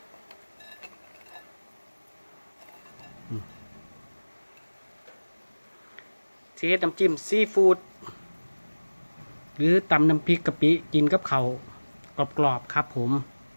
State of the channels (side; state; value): both; inverted; correlation -1.00